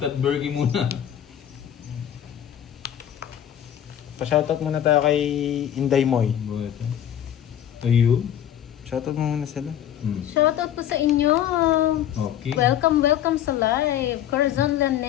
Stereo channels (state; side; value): quieter; right; 10.5 dB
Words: burger muna. Pa-shoutout muna tayo kay Inday Moy. Ayun. Shoutout mo muna sila. Shoutout po sa inyo. Okay. Welcome sa live. Corazon